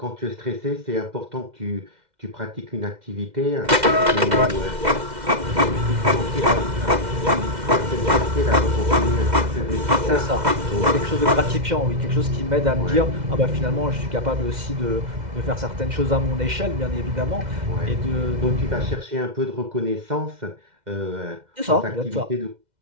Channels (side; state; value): left; late; 2.1 ms